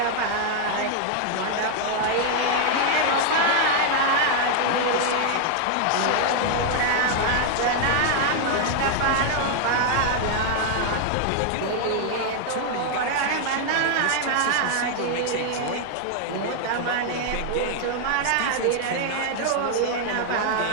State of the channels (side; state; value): both; different; correlation 0.00